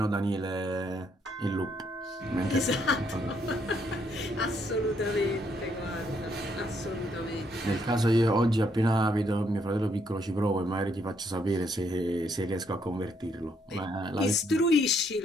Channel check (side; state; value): both; normal; correlation 0.72